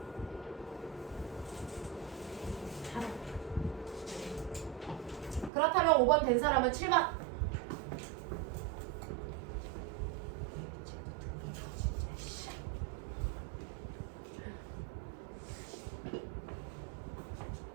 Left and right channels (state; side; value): drops out; left; at 5.5 s